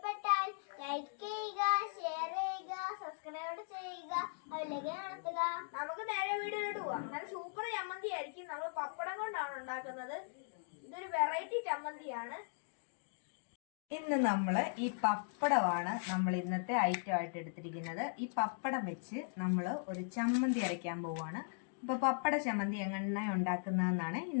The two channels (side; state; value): right; silent; digital silence